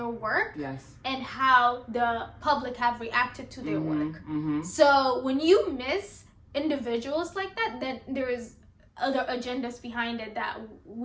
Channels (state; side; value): identical; both; correlation 1.00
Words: work. Yes. And how the public have reacted to their work. So when you miss individuals like that, then there is other agendas behind it that